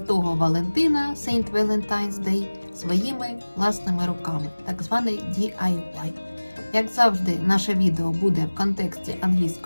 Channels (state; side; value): inverted; both; correlation -1.00